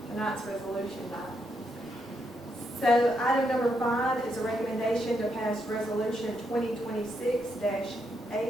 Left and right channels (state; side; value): normal; both; correlation 0.79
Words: Tonight's resolution died. So item number 5 is a recommendation to pass resolution